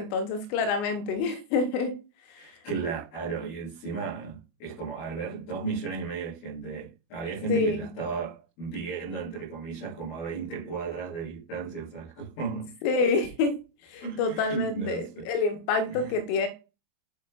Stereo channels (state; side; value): late; right; 24 ms